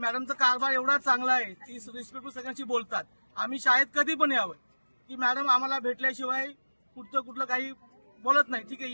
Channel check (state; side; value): inverted; both; correlation -1.00